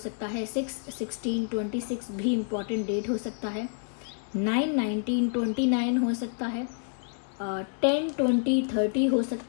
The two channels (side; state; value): right; silent; 58 dB below the other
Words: है, 6/16/26 भी इम्पॉर्टेंट डेट हो सकता है, 9/19/29 हो सकता है, 10/20/30 हो